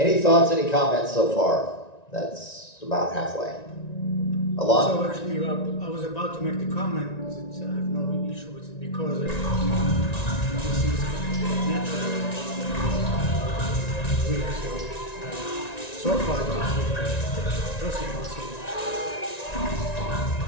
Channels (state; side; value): late; right; 1.9 ms